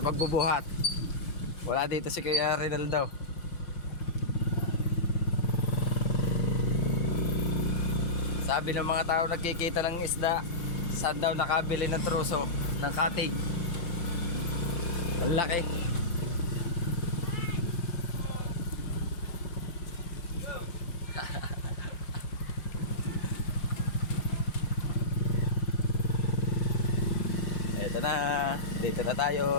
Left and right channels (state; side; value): late; right; 5.6 ms